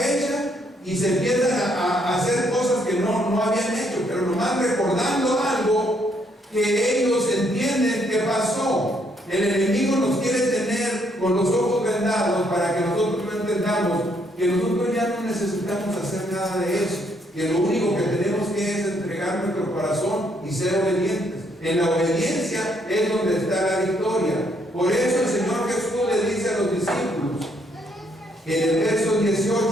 y se empiezan a hacer cosas que no habían hecho, pero nomás recordando algo que ellos entienden que pasó. El enemigo nos quiere tener con los ojos vendados para que nosotros no entendamos que nosotros ya no necesitamos hacer nada de eso, que lo único que tenemos que es entregar nuestro corazón y ser obedientes. En la obediencia es donde está la victoria. Por eso el Señor Jesús le dice a los discípulos, en el verso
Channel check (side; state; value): both; normal; correlation 0.71